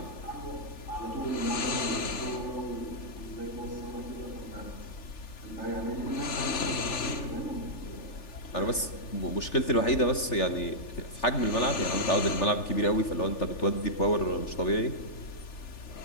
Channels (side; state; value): right; late; 3.4 ms